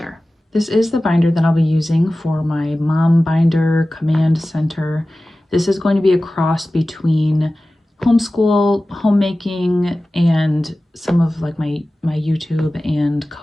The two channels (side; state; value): both; normal; correlation 0.96